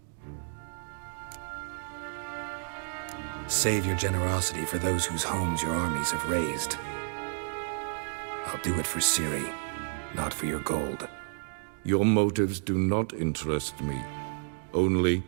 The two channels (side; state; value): left; silent; digital silence